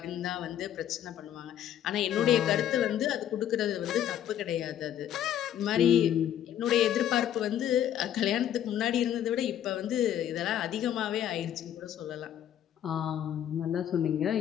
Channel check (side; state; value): right; quieter; 10.6 dB